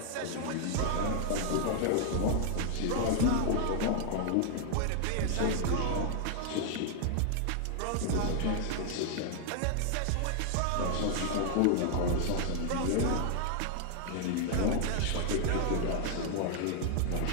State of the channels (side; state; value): both; different; correlation 0.00